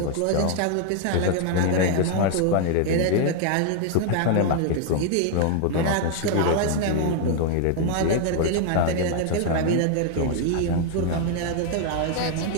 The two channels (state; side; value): different; both; correlation 0.00